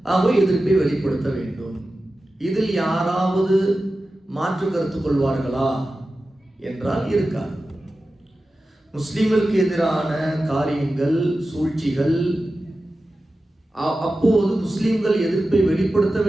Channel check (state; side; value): normal; both; correlation 0.94